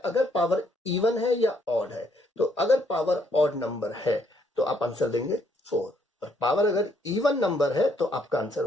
पावर इवन है या ऑड है, तो अगर पावर ऑड नंबर है तो आप आंसर देंगे 4, और पावर अगर इवन नंबर है तो आपका आंसर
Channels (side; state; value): both; normal; correlation 0.70